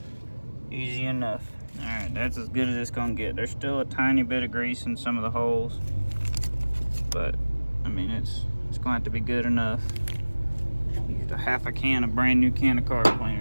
Easy enough. All right, that's as good as it's gonna get. There's still a tiny bit of grease in some of the holes, but I mean, it's gonna have to be good enough. Used a half a can of brand new can of car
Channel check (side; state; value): both; inverted; correlation -1.00